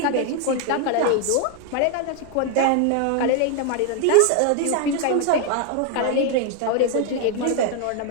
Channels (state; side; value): different; both; correlation 0.01